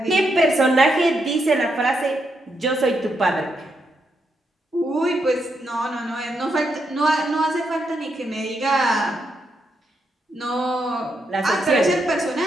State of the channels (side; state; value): both; normal; correlation 0.81